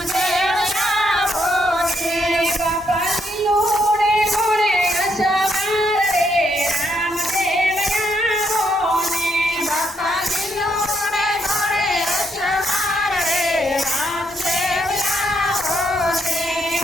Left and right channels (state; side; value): normal; both; correlation 0.76